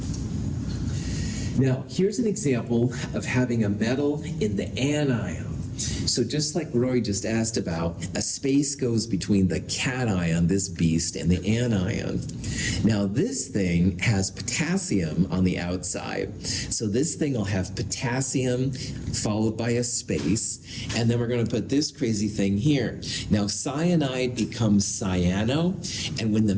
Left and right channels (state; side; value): identical; both; correlation 1.00